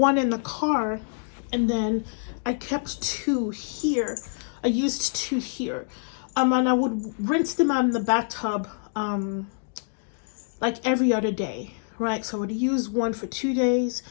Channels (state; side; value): silent; right; digital silence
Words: in the car, and then I kept two here. I used two here. And I would rinse them out in the bathtub like every other day. Right, so I would use one for 2 days